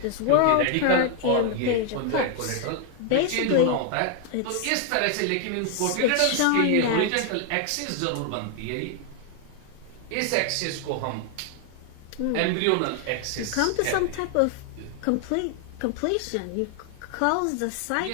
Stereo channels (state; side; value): different; both; correlation 0.00